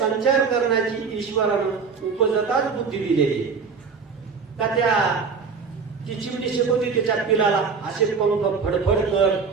करण्याची ईश्वरानं उपजताच बुद्धी दिलेली का? ती चिमणी शिकवते त्याच्या पिलाला असे पंख फडफड कर,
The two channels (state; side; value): quieter; left; 5.4 dB